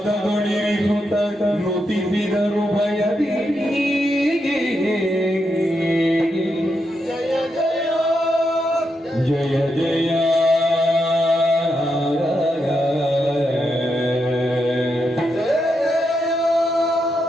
ನುತಿಸಿದರು ಭಯದಿ ಜಯ ಜಯ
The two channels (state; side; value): normal; both; correlation 0.83